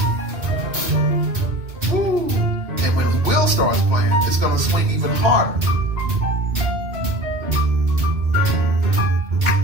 Woo. And when Will starts playing, it's going to swing even harder.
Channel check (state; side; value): late; left; 3.0 ms